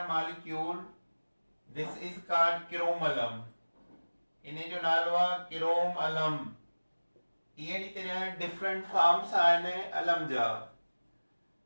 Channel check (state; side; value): inverted; both; correlation -1.00